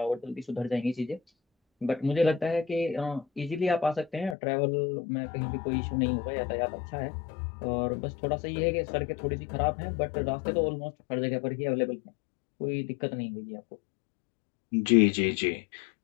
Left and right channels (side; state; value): right; drops out; at 4.4 s